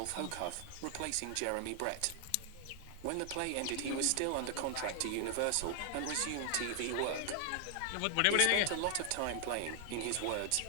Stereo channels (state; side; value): different; both; correlation 0.00